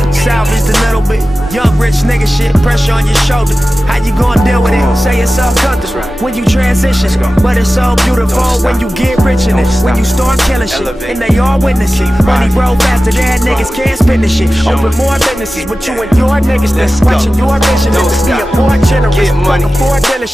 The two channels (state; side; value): normal; both; correlation 0.95